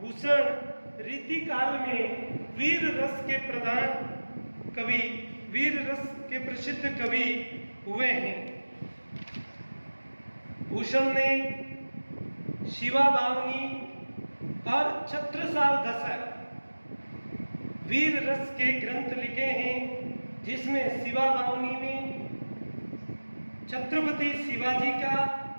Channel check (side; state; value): both; inverted; correlation -1.00